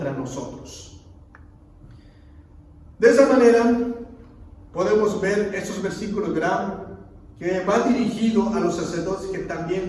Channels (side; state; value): both; identical; correlation 1.00